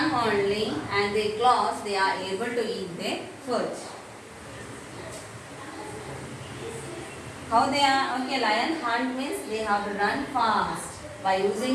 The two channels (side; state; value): both; identical; correlation 1.00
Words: only and their claws, they are able to eat their food. How they are? Okay, lion hunt means they have to run fast. By